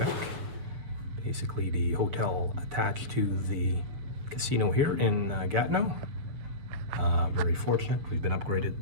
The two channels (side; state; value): left; late; 7.9 ms